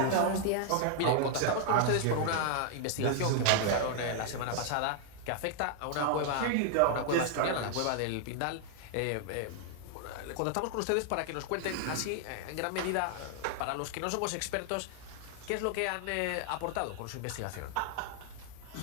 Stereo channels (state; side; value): different; both; correlation 0.00